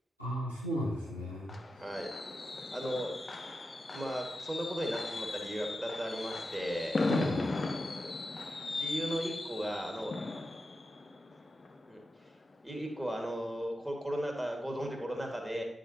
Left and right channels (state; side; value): normal; both; correlation 0.90